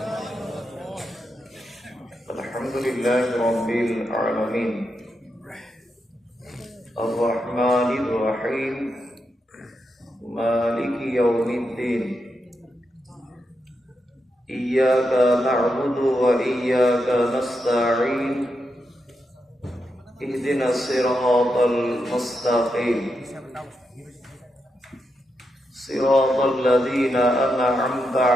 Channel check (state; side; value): normal; both; correlation 0.85